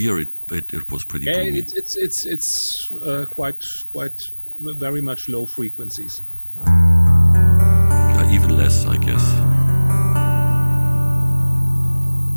It was pretty Yeah, boomy. it's quite very much low frequencies. Even less, I guess.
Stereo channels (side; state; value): both; inverted; correlation -1.00